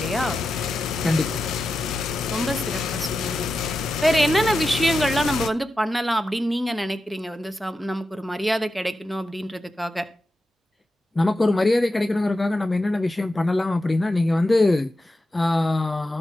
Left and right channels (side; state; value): both; normal; correlation 0.90